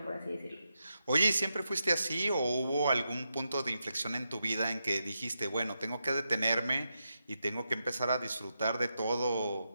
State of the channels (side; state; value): both; inverted; correlation -0.86